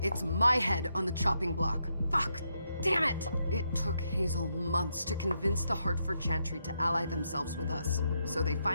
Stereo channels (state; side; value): inverted; both; correlation -0.80